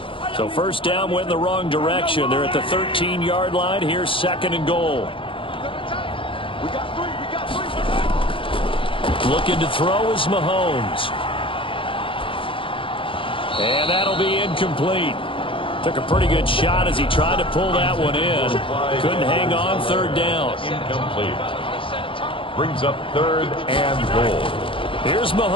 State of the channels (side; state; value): right; late; 0.25 ms